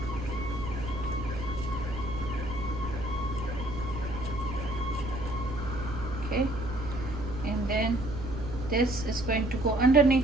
Okay, and then this is going to go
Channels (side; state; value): right; noise; hum, 8 dB below the sound